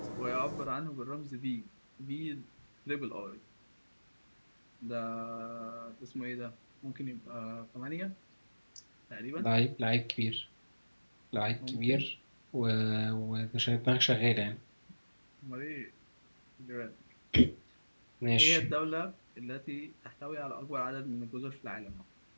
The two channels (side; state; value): both; inverted; correlation -1.00